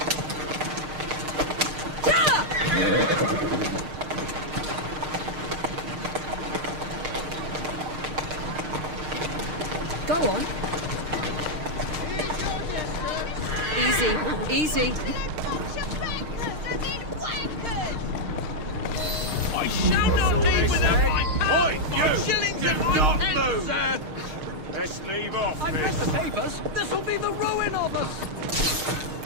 Go on. Easy, easy. Best leave off, I've read miss. the papers. This'll be the ruin of us.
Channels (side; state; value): left; late; 6.5 ms